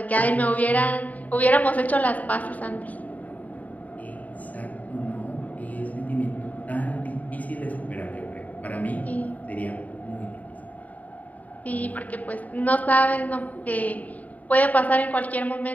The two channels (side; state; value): right; late; 0.073 ms